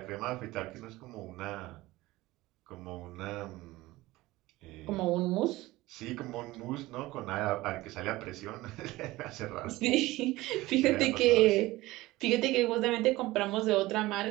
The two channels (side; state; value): left; quieter; 18.7 dB